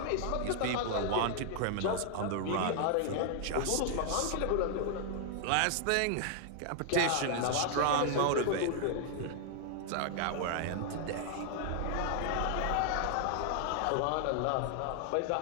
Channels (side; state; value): both; different; correlation 0.00